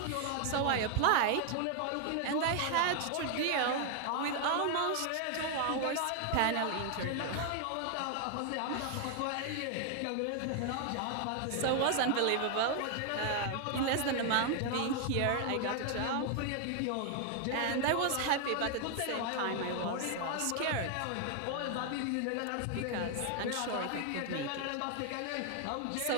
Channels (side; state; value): both; different; correlation 0.00